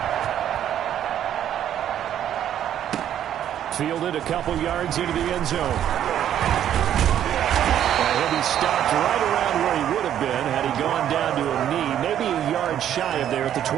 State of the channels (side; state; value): left; quieter; 10.5 dB